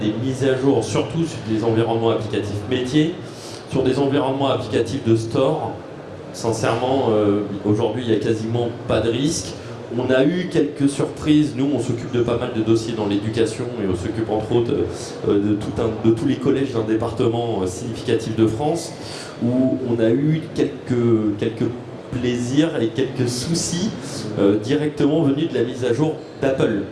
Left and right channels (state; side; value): identical; both; correlation 1.00